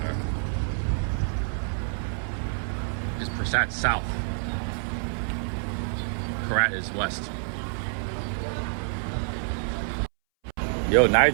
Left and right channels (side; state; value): left; silent; 60 dB below the other